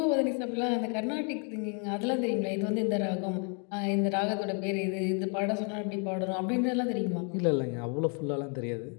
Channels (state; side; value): quieter; right; 39.1 dB